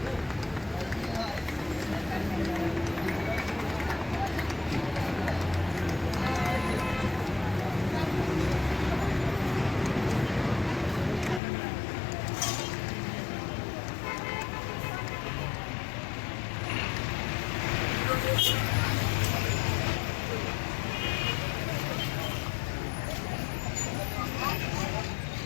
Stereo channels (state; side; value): drops out; right; at 11.4 s